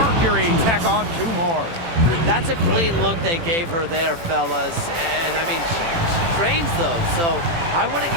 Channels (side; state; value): left; late; 18 ms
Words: tack on 2 more. That's a clean look they gave her there, fellas. And, I mean, she trains those, so I wouldn't